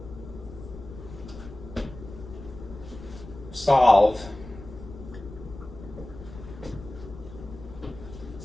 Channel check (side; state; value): left; noise; rumble, 14 dB below the sound